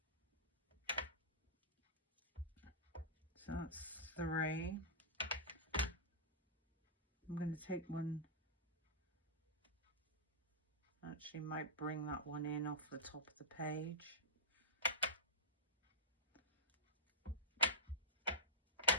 So that's 3. I'm going to take one, actually might bring that one in off the top of the page.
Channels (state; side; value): normal; both; correlation -0.16